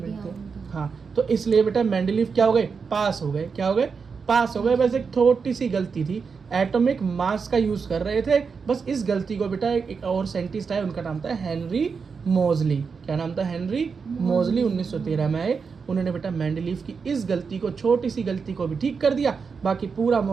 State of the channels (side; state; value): left; quieter; 5.5 dB